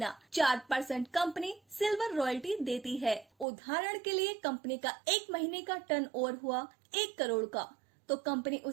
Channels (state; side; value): drops out; left; at 3.5 s